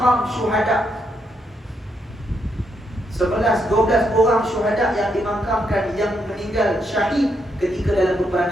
syuhada. 11-12 orang syuhada yang dimakamkan, yang meninggal syahid ketika dalam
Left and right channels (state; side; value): normal; both; correlation 0.78